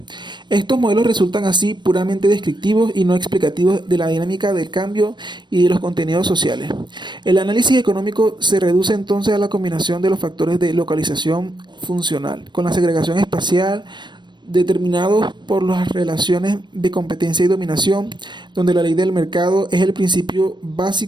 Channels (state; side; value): late; left; 0.22 ms